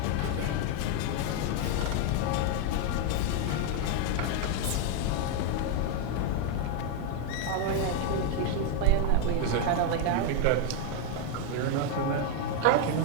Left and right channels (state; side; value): different; both; correlation 0.01